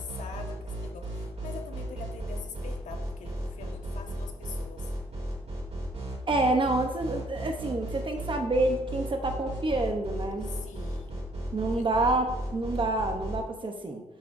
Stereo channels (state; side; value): normal; both; correlation 0.64